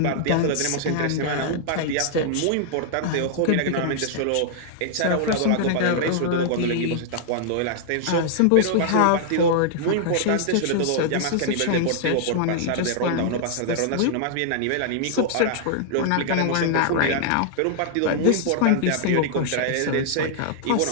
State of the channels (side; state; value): both; different; correlation -0.01